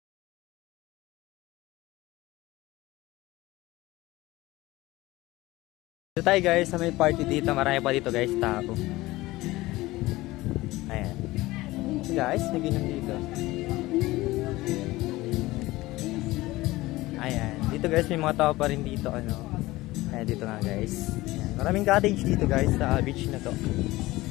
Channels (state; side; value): quieter; right; 19.0 dB